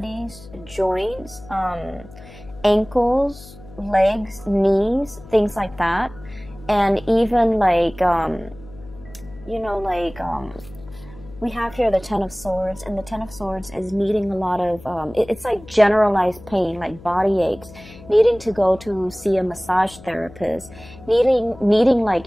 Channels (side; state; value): left; noise; hum, 19 dB below the sound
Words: joints, ankles, legs, knees, things like that. And even like, you know, like, we have here the Ten of Swords, and the Ten of Swords is needing a lot of, it's like generalized pain, like body aches, needing to go to see a massage therapist, needing like,